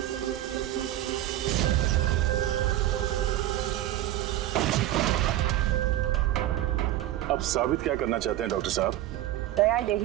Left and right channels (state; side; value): quieter; left; 13.8 dB